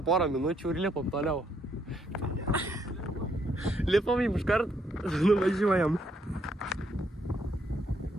porą minučių ir lipam toliau. Lipam jums iškart, nuvažiuojam.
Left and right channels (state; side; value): normal; both; correlation 0.73